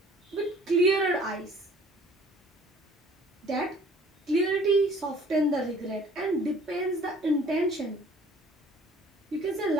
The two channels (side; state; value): both; normal; correlation 0.53